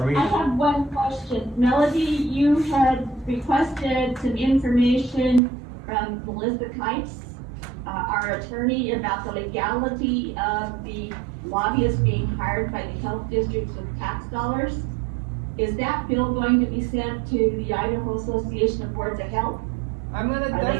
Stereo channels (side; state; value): left; drops out; at 5.4 s